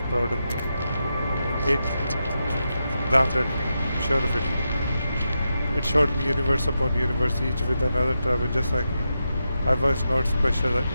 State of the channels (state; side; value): inverted; both; correlation -0.87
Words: proud of me. It laughed at me, sure of it. It showed me universe upon universe, each with another traveler just like me. I was not special,